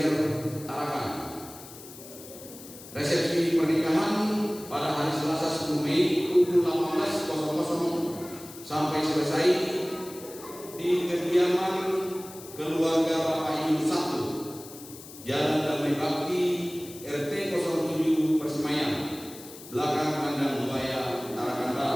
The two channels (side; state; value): left; noise; hiss, 16 dB below the sound